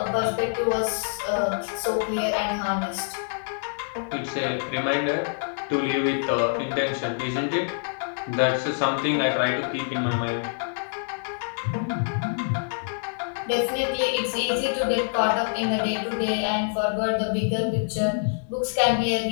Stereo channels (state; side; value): silent; right; digital silence